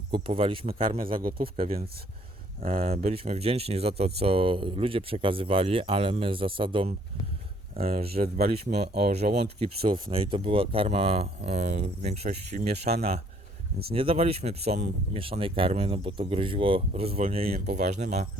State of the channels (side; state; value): both; normal; correlation 0.63